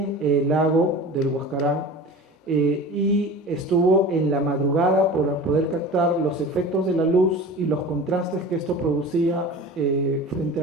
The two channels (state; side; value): normal; both; correlation 0.36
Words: el lago del Huascarán y estuvo en la madrugada para poder captar los efectos de la luz y los contrastes que esto producía frente